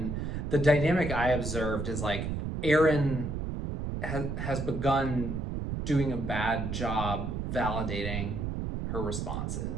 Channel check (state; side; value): noise; right; rumble, 3 dB below the sound